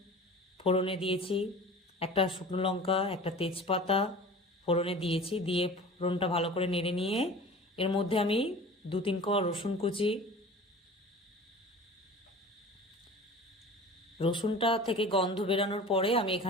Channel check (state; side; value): normal; both; correlation 0.39